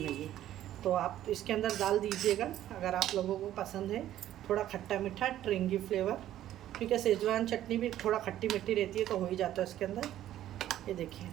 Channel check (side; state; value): left; quieter; 12.6 dB